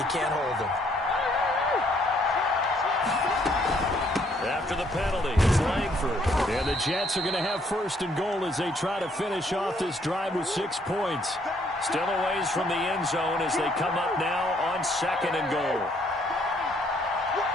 can't hold him. After the penalty, it's Langford. And the Jets are going to have 1st and goal as they try to finish off this drive with 6 points. Still a ways from the end zone as they come up now on 2nd and goal.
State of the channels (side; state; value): both; normal; correlation 0.67